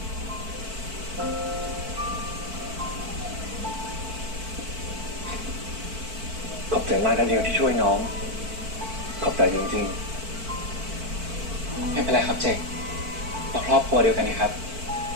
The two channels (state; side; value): late; left; 4.5 ms